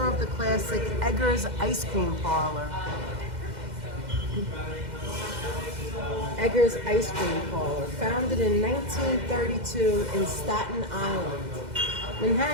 of the classic Eggers Ice Cream Parlor. Eggers Ice Cream Parlor, founded in 1932 in Staten Island.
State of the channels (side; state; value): left; late; 2.0 ms